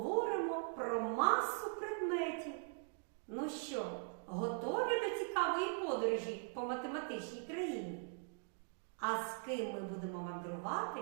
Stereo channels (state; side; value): silent; left; 50 dB below the other